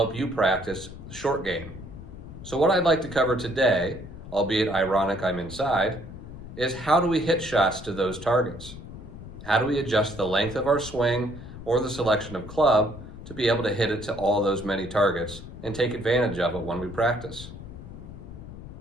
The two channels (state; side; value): noise; left; rumble, 13 dB below the sound